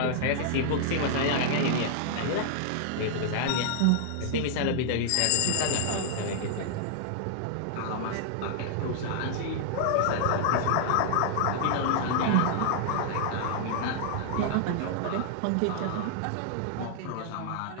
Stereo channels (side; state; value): both; different; correlation 0.00